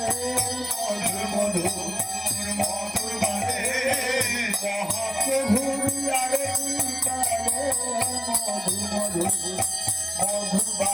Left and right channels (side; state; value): both; identical; correlation 1.00